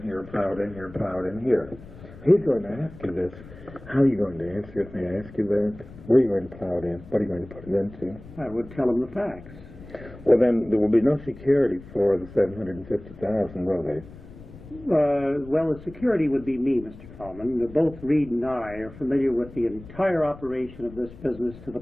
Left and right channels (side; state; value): left; noise; rumble, 17 dB below the sound